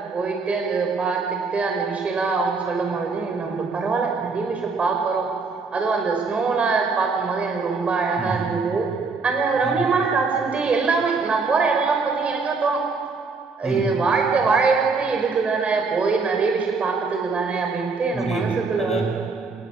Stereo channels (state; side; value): quieter; left; 4.4 dB